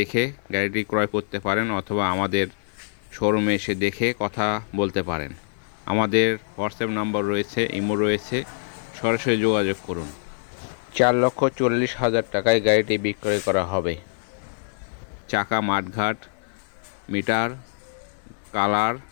গাড়িটি ক্রয় করতে পারেন অথবা আমাদের শোরুমে এসে দেখে কথা বলতে পারেন। আমাদের হোয়াটসঅ্যাপ নাম্বার রয়েছে, ইমো রয়েছে, সরাসরি যোগাযোগ করুন। 4,40,000 টাকায় গাড়িটি বিক্রয় করা হবে। চাকা, মাঠঘাট, মিটার, কালার,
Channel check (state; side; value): silent; right; 62 dB below the other